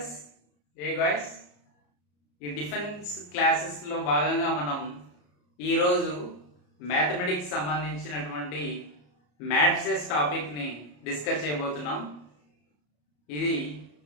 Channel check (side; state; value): right; late; 34 ms